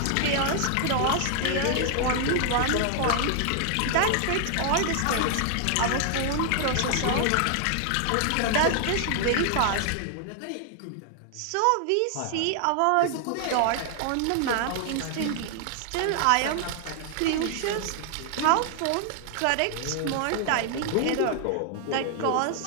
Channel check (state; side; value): different; both; correlation 0.00